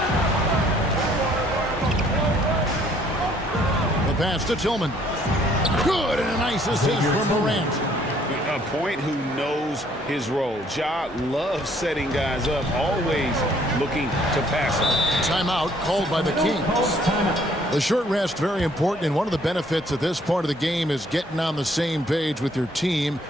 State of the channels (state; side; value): normal; both; correlation 0.62